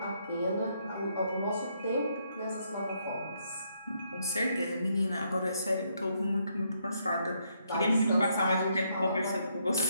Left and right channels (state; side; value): inverted; both; correlation -0.74